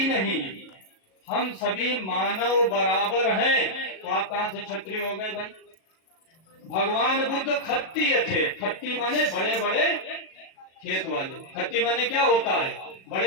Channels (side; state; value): right; late; 37 ms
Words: नहीं, हम सभी मानव बराबर हैं, तो आप कहां से क्षत्रिय हो गए भाई? भगवान बुद्ध खत्तीय थे। खत्ती माने बड़े बड़े खेत वाले। खत्ती माने क्या होता है?